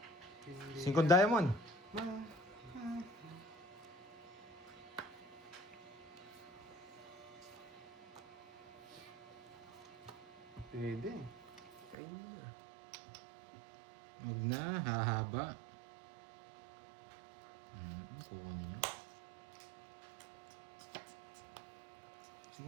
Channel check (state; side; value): drops out; left; at 12.0 s